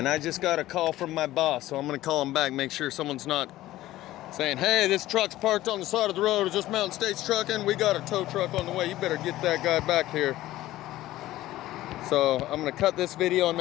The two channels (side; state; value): right; quieter; 15.6 dB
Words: I just got a call from my boss, so I'm gonna call him back, make sure someone's not saying, hey, this truck's parked on the side of the road, is this Mountain States trucking? We got a tow truck on the way, you better get that guy back here. So I'm gonna cut this video and